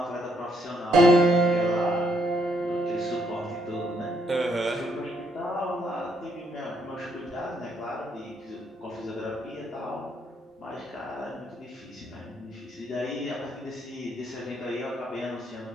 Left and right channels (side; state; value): both; normal; correlation 0.72